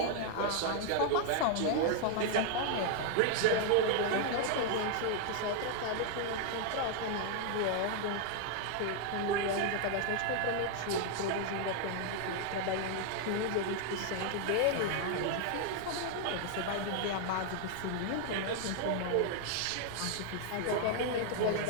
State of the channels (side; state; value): both; different; correlation 0.00